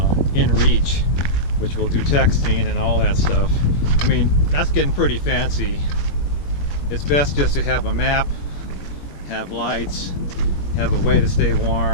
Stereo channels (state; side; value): late; right; 21 ms